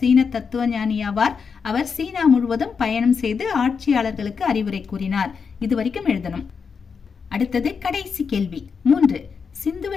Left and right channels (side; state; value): right; quieter; 5.8 dB